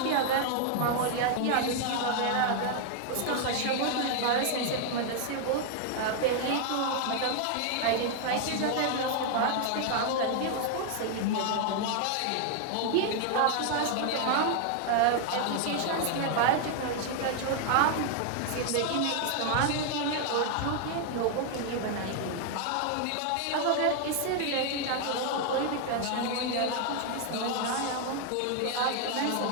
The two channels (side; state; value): both; different; correlation 0.00